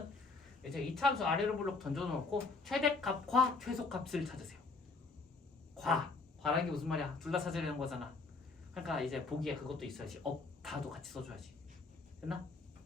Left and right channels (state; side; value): quieter; right; 3.9 dB